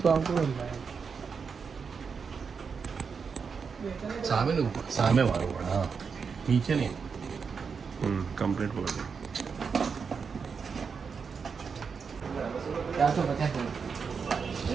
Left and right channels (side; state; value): left; quieter; 5.7 dB